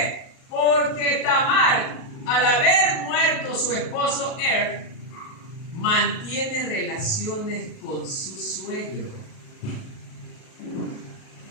Porque Tamar, al haber muerto su esposo Er, mantiene relaciones con su suegro.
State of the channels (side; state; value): right; late; 37 ms